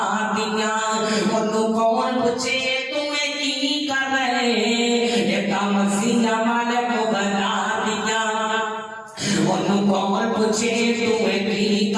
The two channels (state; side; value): identical; both; correlation 1.00